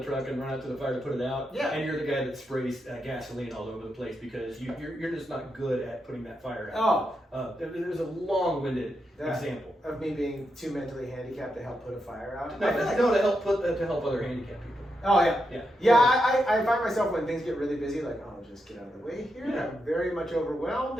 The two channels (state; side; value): normal; both; correlation 0.84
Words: truck and run out to the fire to put it out. Yeah. And you're the guy that sprays gasoline all over the place because you're just not good at putting that fire out. Oh. There's a long-winded example of me being too mentally handicapped to help put a fire out. No, to help other handicapped people. Oh yeah. Yeah. Yeah. I find myself when things get really busy, like, oh, just get out of the way here. Yeah. I'm very much